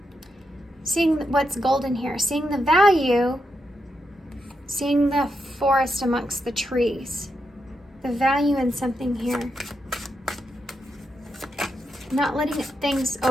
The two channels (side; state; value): both; normal; correlation 0.84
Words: what's golden here, seeing the value, seeing the forest amongst the trees, the value in something here. Not letting things